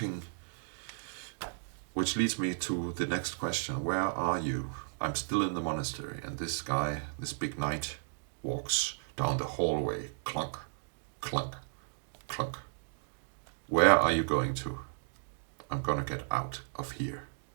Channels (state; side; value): silent; left; digital silence